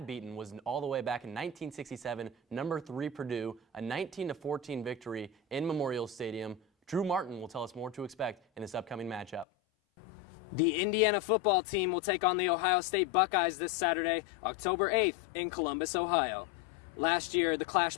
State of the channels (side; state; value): right; drops out; at 9.5 s